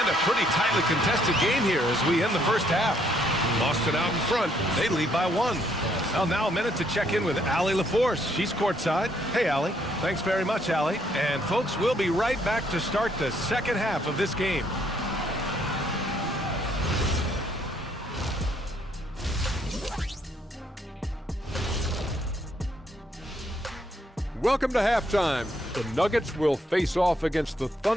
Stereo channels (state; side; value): normal; both; correlation 0.70